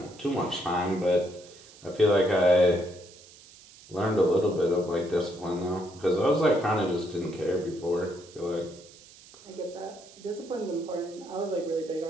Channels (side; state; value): right; noise; hiss, 22 dB below the sound